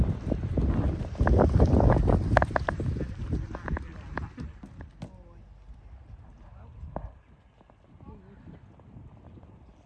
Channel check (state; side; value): identical; both; correlation 1.00